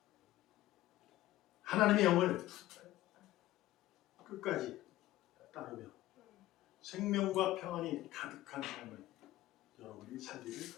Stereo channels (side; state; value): right; quieter; 15.7 dB